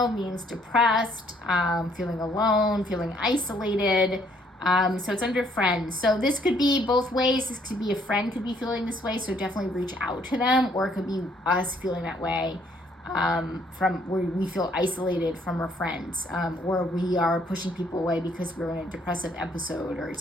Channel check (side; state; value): both; normal; correlation 0.66